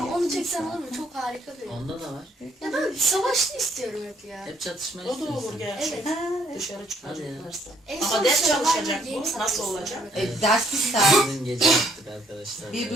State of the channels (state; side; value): normal; both; correlation 0.67